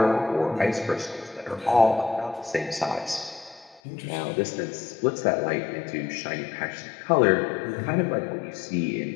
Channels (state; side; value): drops out; right; at 3.8 s